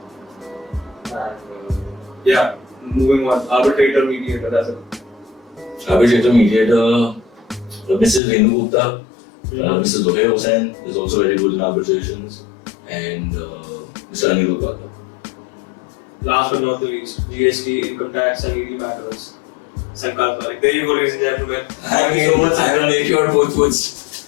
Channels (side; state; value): right; drops out; at 8.2 s